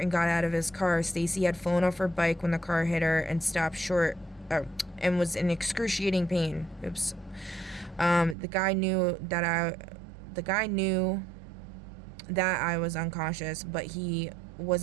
and got out of his car. Stacy had flown off her bike when the car hit her and stopped short and was in excruciating pain. Oops. The guy knew that I was unconscious, but he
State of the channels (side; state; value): left; drops out; at 8.3 s